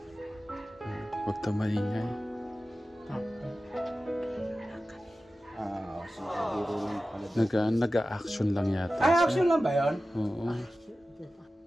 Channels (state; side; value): normal; both; correlation 0.95